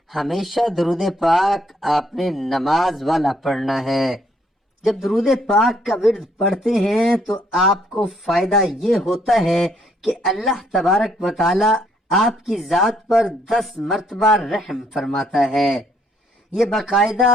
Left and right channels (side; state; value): both; normal; correlation 0.68